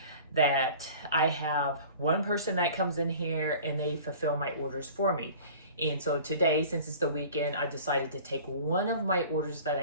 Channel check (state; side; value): inverted; both; correlation -0.44